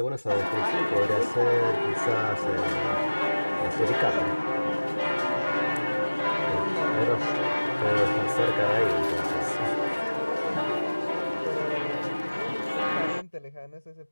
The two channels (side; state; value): both; inverted; correlation -1.00